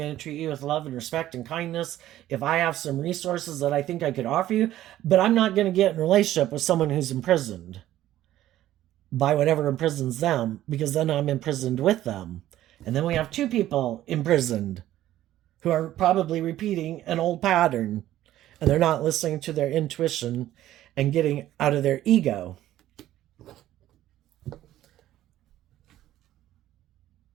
to treat you with love and respect and kindness if I have some resources that I think I could offer you, but I'm not going to get in a relationship with someone who's imprisoned by whatever imprisons them, because then I'm imprisoned with them. And then we have two people imprisoned who are probably repeating an old pattern, and they're not listening to their intuition and getting out of their ego.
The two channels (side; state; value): left; quieter; 13.5 dB